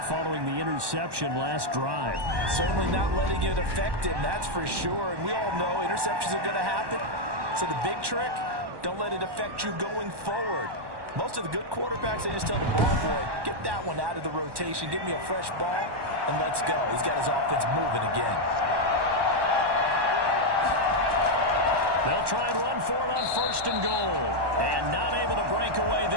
following the interception last drive. Certainly not letting it affect him, that's for sure. And we all know interceptions are going to happen. So the big trick, don't let it affect you going forward. Most of the good quarterbacks, they just tell the ball boy, get that one out of the rotation, give me a fresh ball, and let's go. He's got his offense moving again. They'll try and run for it on 1st and goal. And not able to break away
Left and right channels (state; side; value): late; left; 1.1 ms